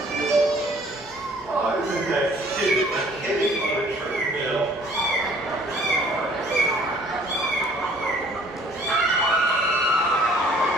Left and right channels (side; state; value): both; normal; correlation 0.56